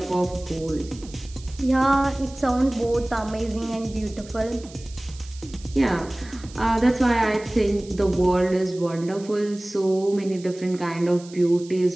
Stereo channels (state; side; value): noise; right; hiss, 20 dB below the sound